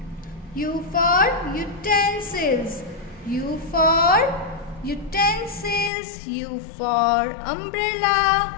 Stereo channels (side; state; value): right; drops out; at 5.9 s